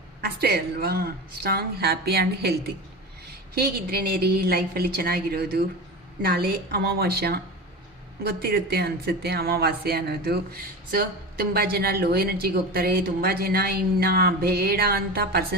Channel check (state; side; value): normal; both; correlation 0.27